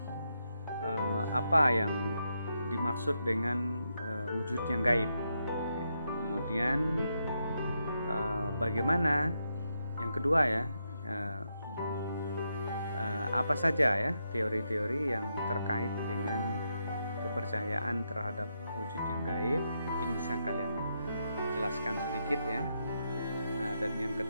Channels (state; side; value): inverted; both; correlation -0.82